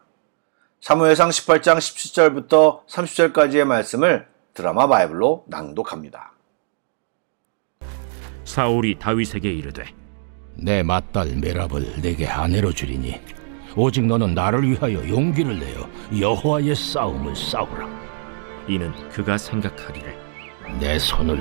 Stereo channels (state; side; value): silent; left; digital silence